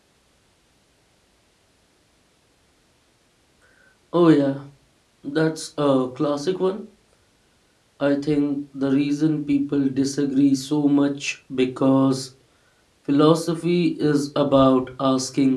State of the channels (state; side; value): identical; both; correlation 1.00